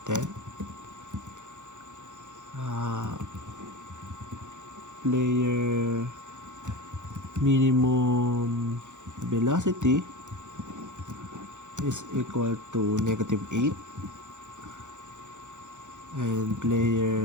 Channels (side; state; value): left; late; 0.85 ms